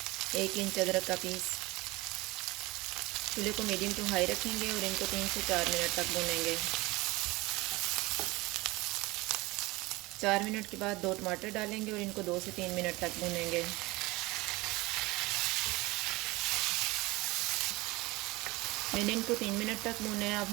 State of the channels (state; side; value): quieter; left; 22.0 dB